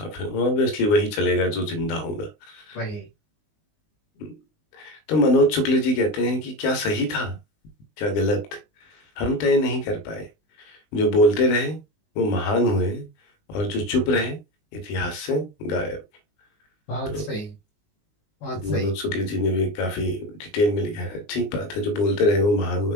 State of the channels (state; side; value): late; right; 19 ms